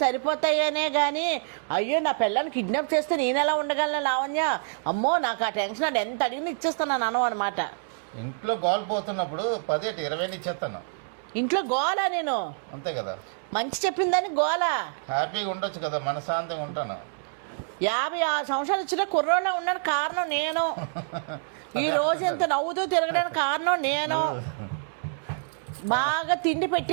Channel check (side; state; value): left; silent; 60 dB below the other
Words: సరిపోతాయనే కానీ అయ్యో నా పిల్లల్ని కిడ్నాప్ చేస్తే నేను ఎలా ఉండగలను లావణ్య, అమ్మో నాకు ఆ టెన్షన్ అది ఎంత అడిగినా ఇచ్చేస్తున్నాను అను అనమాట. ఇంట్లో గోల్ పోతున్నప్పుడు 10 20 ఇచ్చేస్తాను. ఇంట్లో గోలా నేను? అంతే కదా, మంచి చెప్పిందని గోలా. హ్యాపీగా ఉండొచ్చు కదా, మనశాంతిగా ఉంటాను. 56 సంవత్సరాలు వచ్చిన కుర్రోళ్ళ ఉన్నాడు, కారణం నేను. ఈ రోజు ఎంత నవ్వుతూ తిరగడానికి కారణం నేను. బాగా తిండి